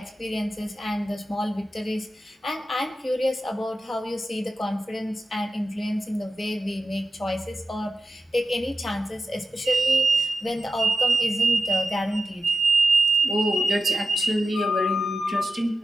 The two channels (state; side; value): normal; both; correlation 0.90